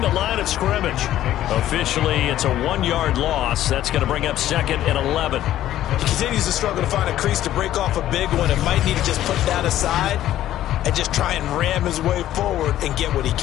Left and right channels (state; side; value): quieter; right; 12.9 dB